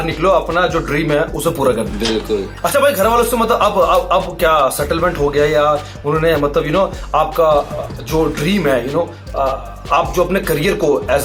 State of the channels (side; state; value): both; identical; correlation 1.00